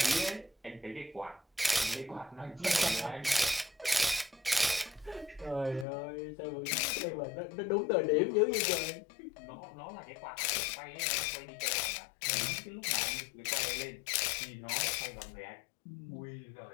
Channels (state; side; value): drops out; right; at 5.9 s